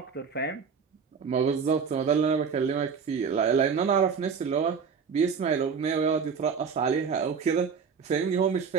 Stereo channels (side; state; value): left; quieter; 6.1 dB